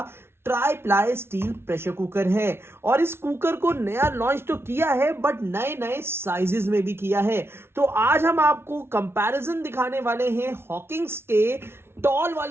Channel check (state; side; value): late; left; 0.12 ms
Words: try ply steel pressure cooker है। और इस कुकर को नया लॉन्च तो किया है बट नए नए साइजेस में भी किया है। तो आज हम आपको कंपैरिजन दिखाने वाले हैं हॉकिंस के टॉल